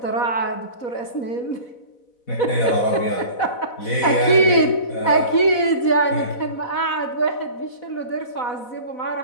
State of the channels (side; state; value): right; late; 4.1 ms